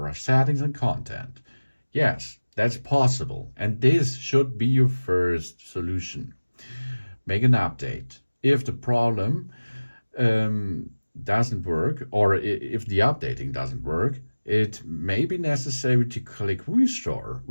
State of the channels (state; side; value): inverted; both; correlation -1.00